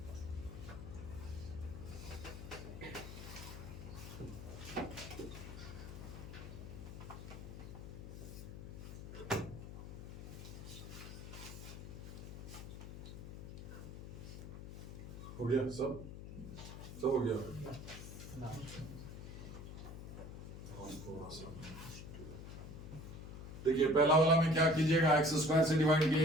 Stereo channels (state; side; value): noise; left; hum, 10 dB below the sound